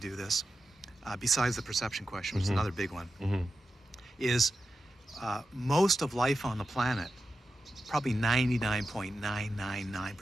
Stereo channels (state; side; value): normal; both; correlation 0.90